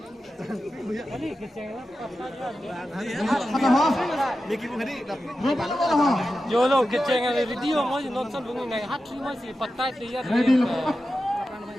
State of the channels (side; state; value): both; normal; correlation 0.92